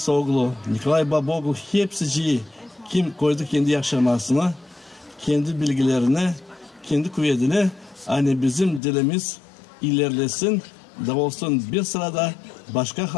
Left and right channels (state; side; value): drops out; right; at 8.8 s